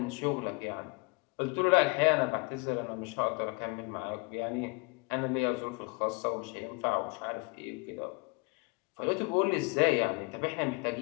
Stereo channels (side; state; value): right; quieter; 29.4 dB